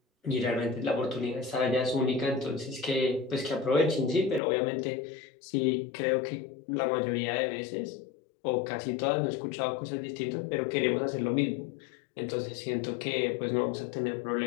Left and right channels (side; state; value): right; drops out; at 4.4 s